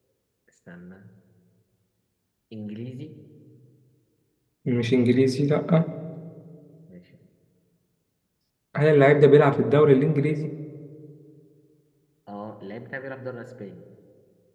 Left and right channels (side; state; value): both; identical; correlation 1.00